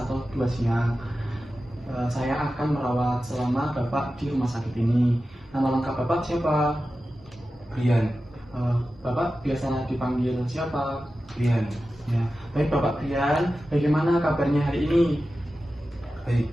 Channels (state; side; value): normal; both; correlation 0.93